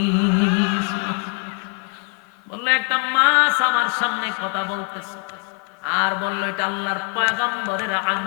বললো একটা মাছ আমার সামনে কথা বলতেছে, আর বললো এটা আল্লাহর পয়গম্বরের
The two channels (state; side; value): quieter; right; 32.9 dB